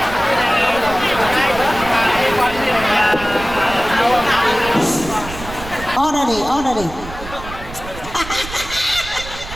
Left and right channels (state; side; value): noise; right; rumble, 12 dB below the sound